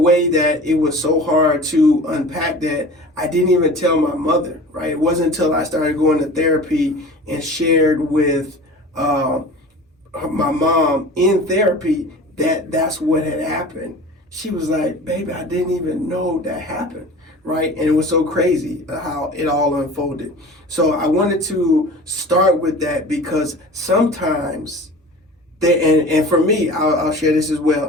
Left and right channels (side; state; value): both; normal; correlation 0.39